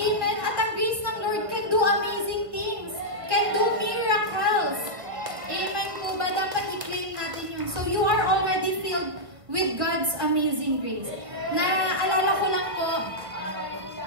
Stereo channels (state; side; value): late; left; 1.7 ms